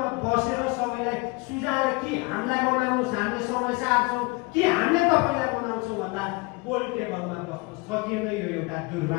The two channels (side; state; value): right; quieter; 26.0 dB